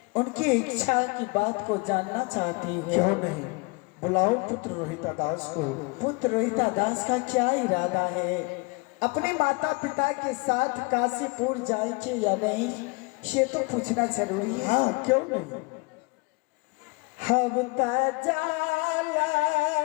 उनकी इच्छा की बात को जानना चाहती हूँ। क्यों नहीं, बुलाओ पुत्र रोहिता दास को। पुत्र रोहिता दास का क्या इरादा है? अपने माता पिता के साथ काशीपुर जाएंगे या नहीं, ये तो पूछना जरूरी है। हाँ क्यों नहीं। हम जाला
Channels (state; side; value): quieter; right; 28.9 dB